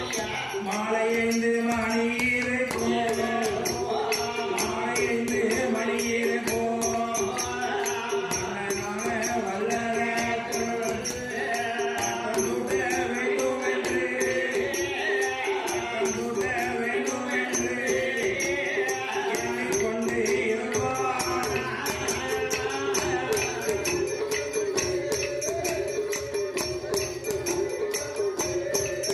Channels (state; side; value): identical; both; correlation 1.00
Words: மாலை 5 மணியிலே